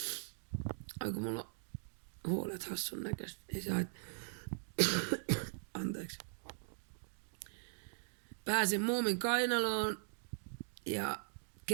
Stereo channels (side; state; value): left; silent; digital silence